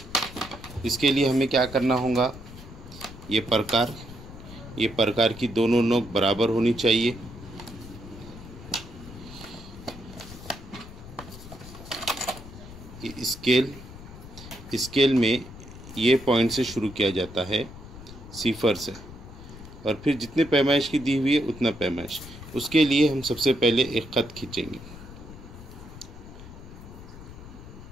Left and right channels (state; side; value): noise; left; rumble, 15 dB below the sound